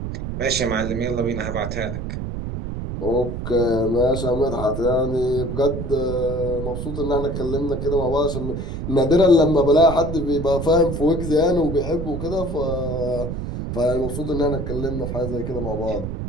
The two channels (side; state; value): right; noise; rumble, 5 dB below the sound